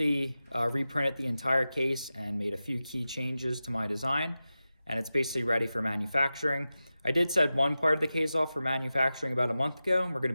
reprinted the entire case and made a few key changes to my design, and it's basically ready for manufacturing. I did set one part of the case off for manufacturing about a month ago, and we're going to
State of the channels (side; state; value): both; inverted; correlation -0.94